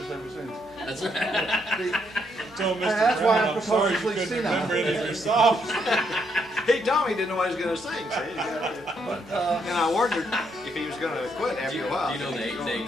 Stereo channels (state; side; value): normal; both; correlation 0.75